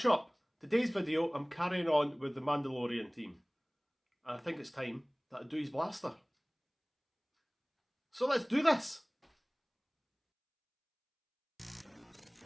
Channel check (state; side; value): identical; both; correlation 1.00